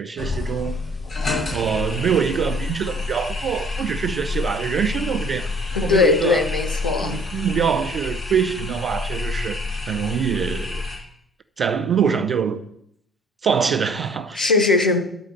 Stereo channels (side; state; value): both; normal; correlation 0.55